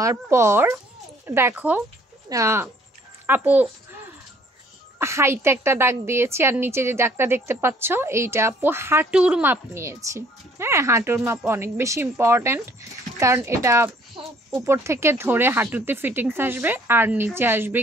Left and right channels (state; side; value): normal; both; correlation 0.60